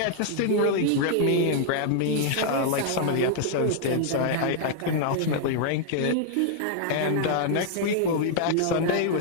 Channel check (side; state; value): both; different; correlation -0.01